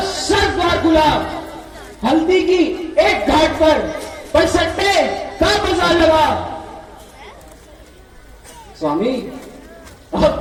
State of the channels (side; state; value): both; identical; correlation 1.00